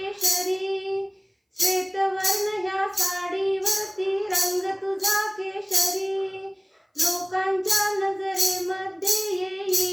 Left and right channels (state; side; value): identical; both; correlation 1.00